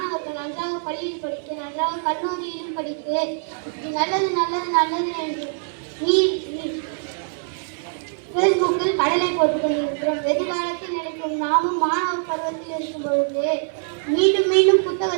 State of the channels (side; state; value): left; silent; 61 dB below the other